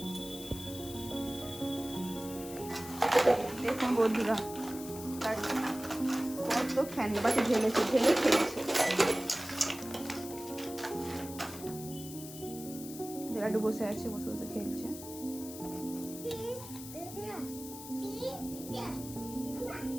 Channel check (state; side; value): noise; left; hiss, 13 dB below the sound